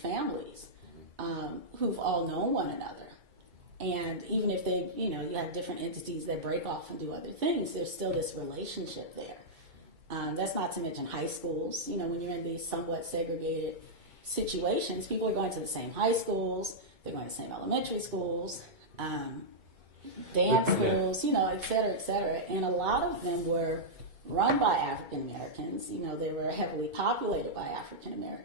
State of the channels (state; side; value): late; left; 2.3 ms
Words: who've all known one another. And even if they, you have different entities that break off and do other things, there's still this relationship there. That's not to mention high schools. When you're in these somewhat segregated situations, people are going to the same high schools, they're going to the same elementary schools, dance schools, et cetera, et cetera. And a lot of them were run by African Americans. They were heavily populated by African